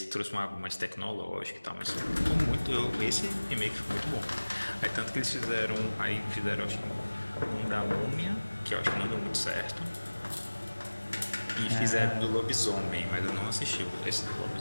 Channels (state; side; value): inverted; both; correlation -1.00